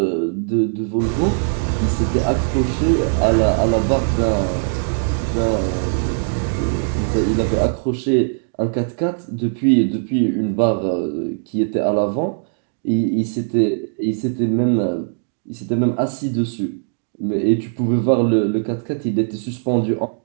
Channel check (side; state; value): left; silent; digital silence